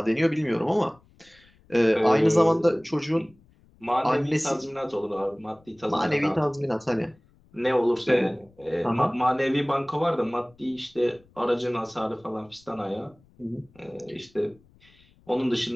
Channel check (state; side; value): noise; left; rumble, 30 dB below the sound